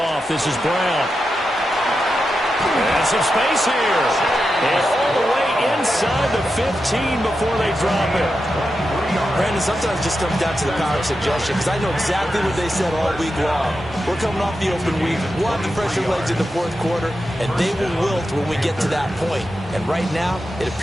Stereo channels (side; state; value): both; normal; correlation 0.89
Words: this is Brown. And some space here. And all the way inside the 15 before they drop it. Brandon, sometimes it just comes down to the power of suggestion, because I know exactly what they said all week long. We're coming off the open week. We'll have the fresher legs in the 4th quarter, and they will wilt when we get to that point. And right now, it